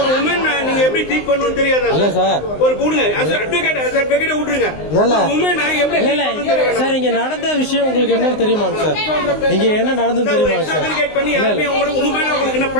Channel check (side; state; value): right; late; 19 ms